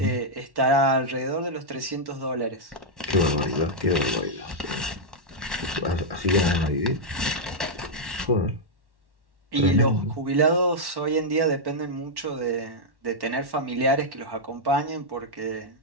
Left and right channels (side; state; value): left; late; 1.1 ms